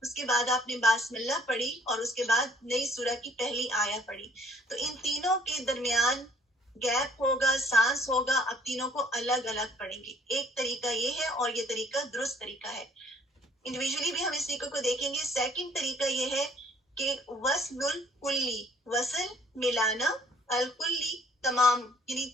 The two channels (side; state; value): both; normal; correlation 0.59